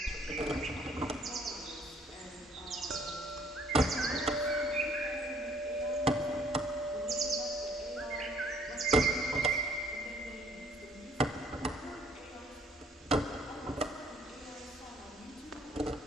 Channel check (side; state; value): both; normal; correlation 0.61